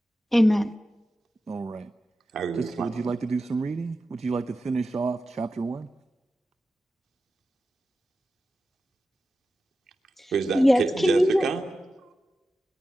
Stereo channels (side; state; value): both; normal; correlation 0.93